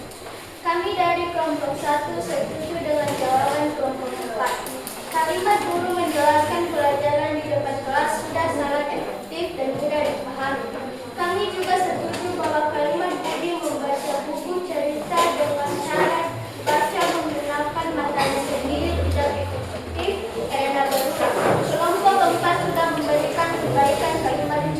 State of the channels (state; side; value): identical; both; correlation 1.00